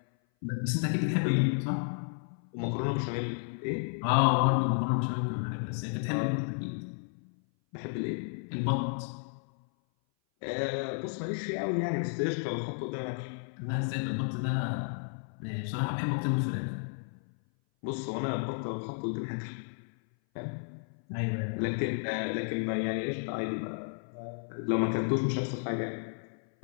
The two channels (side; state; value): right; silent; 56 dB below the other